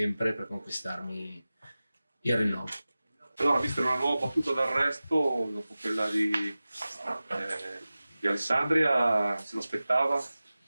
per conquistarmi il rinnovo. Allora, vista una nuova battuta d'arresto dopo quella di Alessandria, se lo aspettava?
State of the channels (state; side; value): inverted; both; correlation -0.96